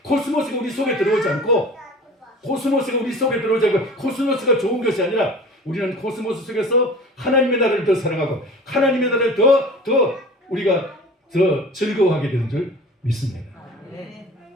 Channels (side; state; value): both; normal; correlation 0.41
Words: 코스모스가 우리 속에 들어오지 않고 코스모스가 우리 속에 들어오지 않고 코스모스가 좋은 것이 아니라 우리는 코스모스 속에서 하나님의 나라를 더 사랑하고 하나님의 나라를 더 우리가 더 즐거워하게 되는 줄 믿습니다.